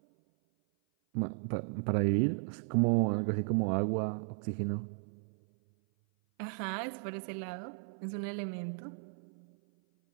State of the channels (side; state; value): left; silent; 55 dB below the other